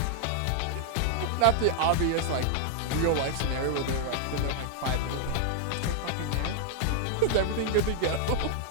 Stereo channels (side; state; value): both; different; correlation 0.00